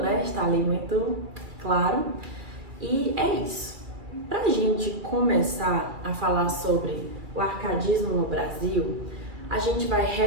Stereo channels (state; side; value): late; left; 2.3 ms